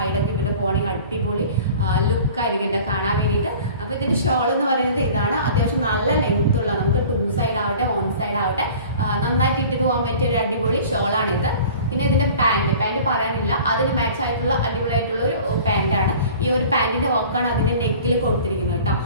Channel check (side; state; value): both; inverted; correlation -0.44